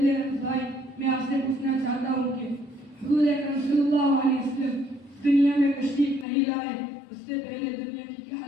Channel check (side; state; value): right; drops out; at 6.2 s